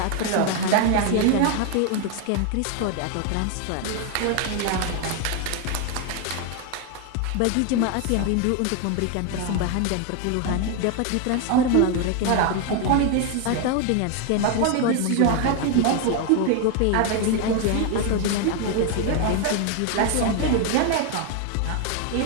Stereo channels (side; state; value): both; different; correlation 0.01